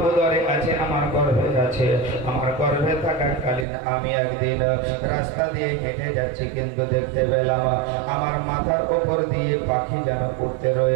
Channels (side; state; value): left; drops out; at 3.7 s